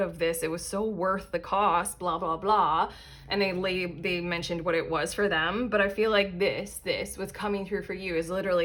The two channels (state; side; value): identical; both; correlation 1.00